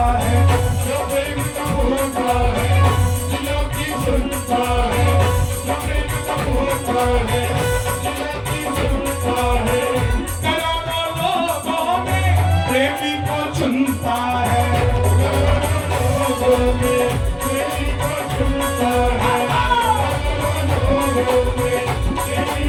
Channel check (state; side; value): identical; both; correlation 1.00